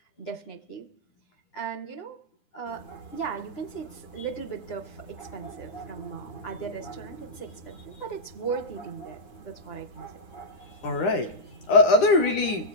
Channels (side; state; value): right; late; 9.9 ms